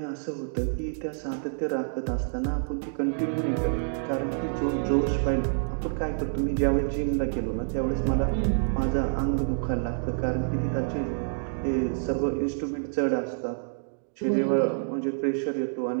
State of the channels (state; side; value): silent; left; digital silence